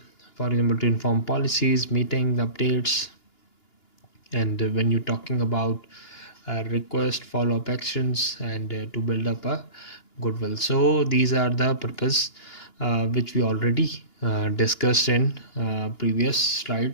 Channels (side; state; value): right; late; 2.9 ms